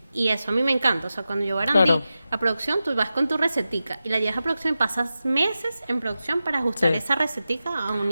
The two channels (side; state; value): both; inverted; correlation -0.93